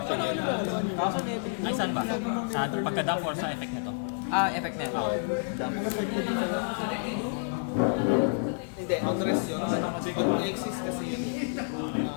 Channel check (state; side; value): silent; right; 58 dB below the other